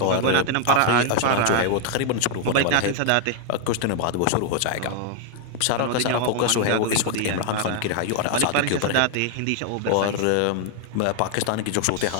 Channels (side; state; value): both; different; correlation 0.00